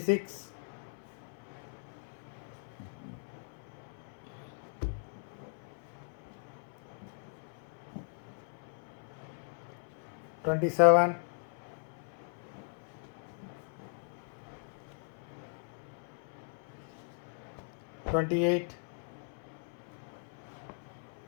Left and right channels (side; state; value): right; silent; 52 dB below the other